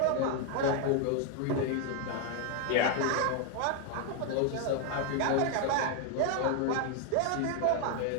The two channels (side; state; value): both; different; correlation 0.01